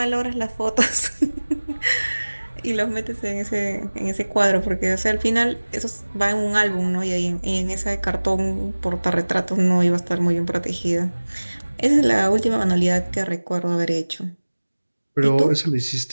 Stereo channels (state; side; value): inverted; both; correlation -1.00